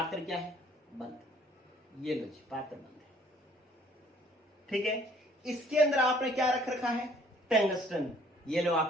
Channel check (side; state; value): both; normal; correlation 0.59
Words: क्या है? बंद। ये लो जी, पात्र बंद है। ठीक है, इसके अंदर आपने क्या रख रखा है? टंगस्टन। ये लो